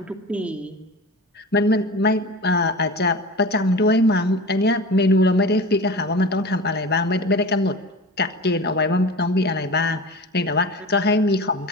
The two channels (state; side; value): normal; both; correlation 0.33